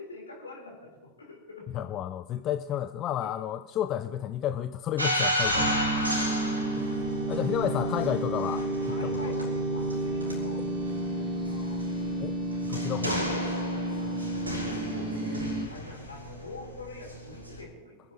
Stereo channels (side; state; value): both; normal; correlation 0.04